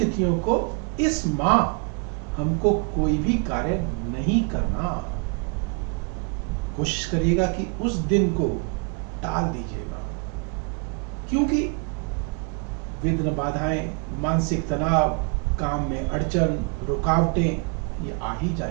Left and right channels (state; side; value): quieter; left; 35.4 dB